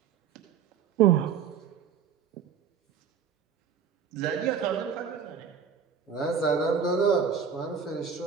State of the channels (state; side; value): quieter; left; 7.0 dB